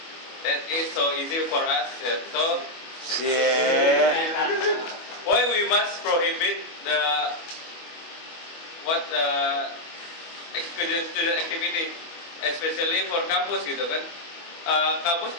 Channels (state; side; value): late; right; 25 ms